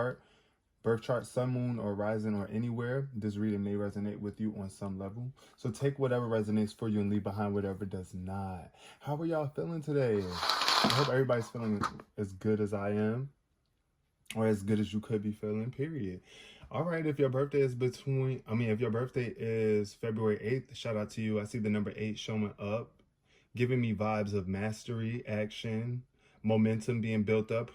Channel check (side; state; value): both; identical; correlation 1.00